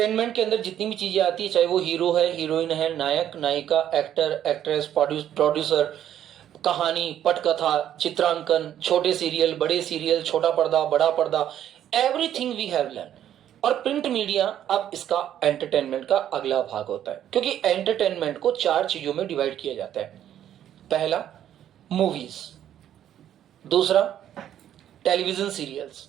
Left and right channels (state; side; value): quieter; left; 10.8 dB